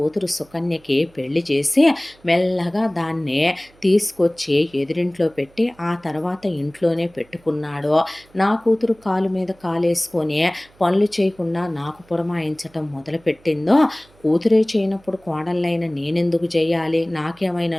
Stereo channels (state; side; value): noise; right; hum, 29 dB below the sound